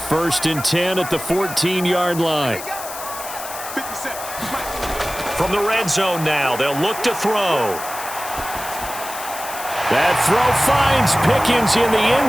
1st and 10 at the 14-yard line. From the red zone now, they'll look to throw. That throw finds Pickens in the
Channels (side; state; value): left; noise; hiss, 10 dB below the sound